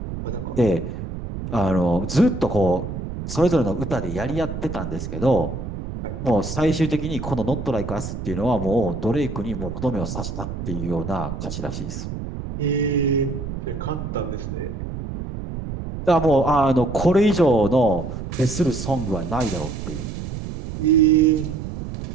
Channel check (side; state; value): right; noise; rumble, 7 dB below the sound